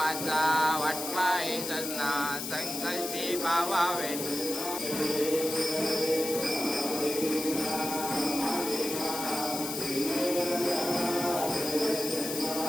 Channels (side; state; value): left; noise; hiss, 5 dB below the sound